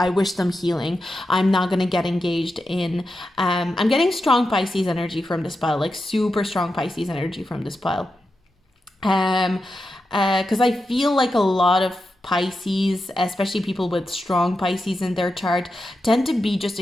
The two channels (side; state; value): both; normal; correlation 0.89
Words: wish them healing. I'm not going to get engaged in, I'm getting strong Pisces energy from this pile, like super strong Pisces energy from this pile. Because I feel like a lot of Pisces, especially people with strong Pisces in their chart, tend to be just